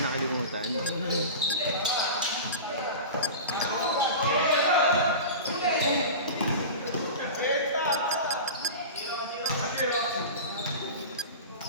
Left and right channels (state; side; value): inverted; both; correlation -0.30